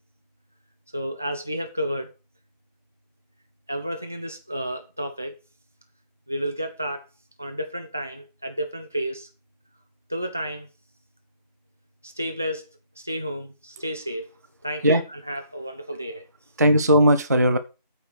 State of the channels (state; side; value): inverted; both; correlation -0.68